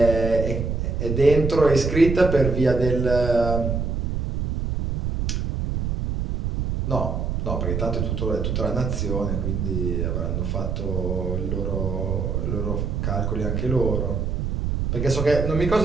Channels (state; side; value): noise; right; rumble, 1 dB below the sound